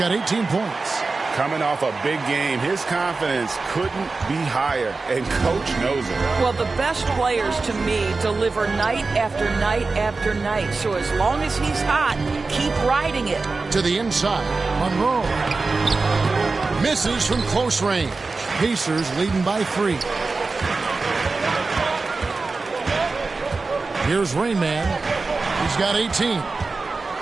18 points. Coming off a big game, his confidence couldn't be higher, and Coach knows it. Well, the best players, to me, deliver night after night after night. So as long as he's hot, keep riding it. To the inside, Monroe. Misses from close range. Pacers leading by 3. Here's Rain Man. He's got 18.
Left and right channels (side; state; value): left; quieter; 3.9 dB